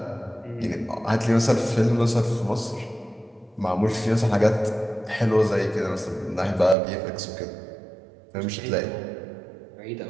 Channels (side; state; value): left; drops out; at 6.8 s